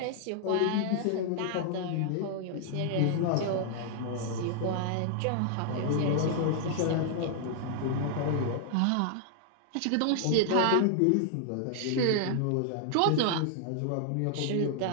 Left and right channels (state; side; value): different; both; correlation -0.01